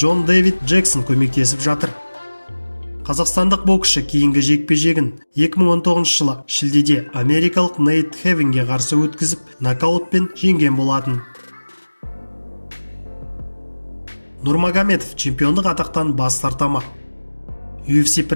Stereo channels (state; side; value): inverted; both; correlation -1.00